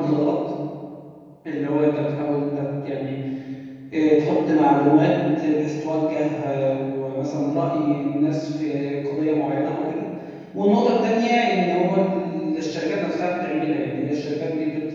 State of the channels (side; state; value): both; identical; correlation 1.00